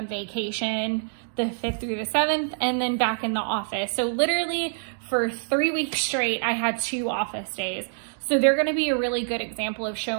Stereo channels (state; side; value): silent; left; digital silence